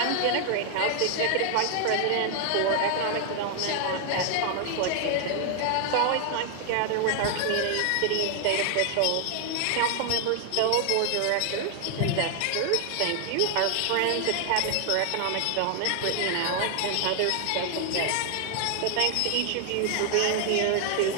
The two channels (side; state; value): both; different; correlation 0.00